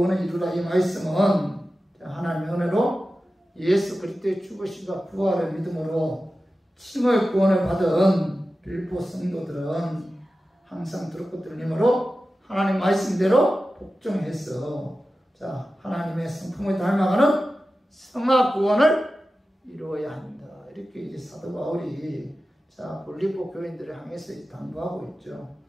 이루라. 이 말씀은 하나님의 은혜로 예수 그리스도의 죽으심과 부활을 믿음으로 칭의 구원을 받은 빌립보 성도들은 항상 두렵고 떨림으로 하나님 말씀대로 복종해서 자, 하나님의 성품을 닮아가는 성화 구원을 이루어야 한다. 이렇게 이제 사도 바울이 자, 빌립보 교인들을 향해서 당부하고 있죠.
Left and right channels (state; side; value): normal; both; correlation 0.94